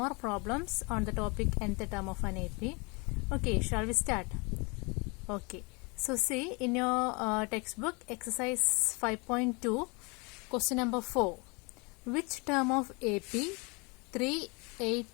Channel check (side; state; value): right; quieter; 29.3 dB